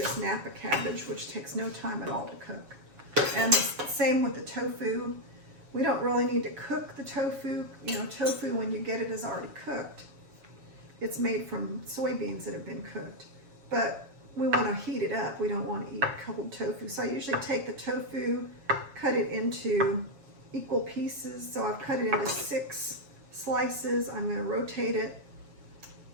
Napa cabbage, which takes no time at all to cook. And the same with the tofu. We don't really need to cook the tofu. You know, tofu, when you get it, is already cooked. It's made from soybeans that have been cooked. But we want to heat it up. We don't want to eat cold tofu. So I usually take the tofu, cut it into equal pieces. So I've cut it into 6 slices. I'm going to rotate it,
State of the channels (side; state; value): left; late; 7.2 ms